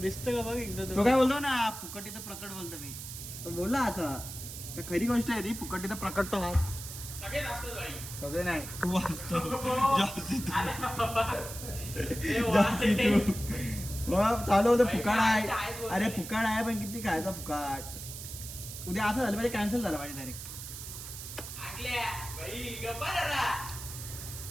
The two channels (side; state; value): right; noise; hiss, 10 dB below the sound